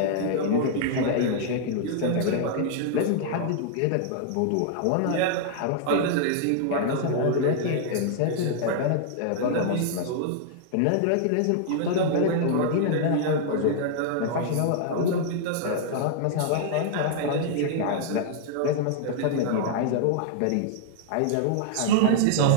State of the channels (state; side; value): different; both; correlation -0.01